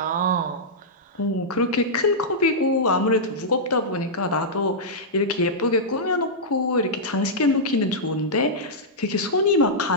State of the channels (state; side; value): normal; both; correlation -0.11